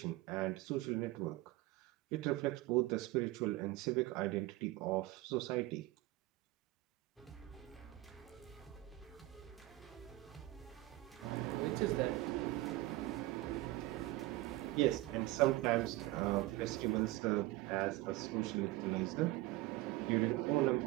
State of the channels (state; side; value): quieter; left; 18.1 dB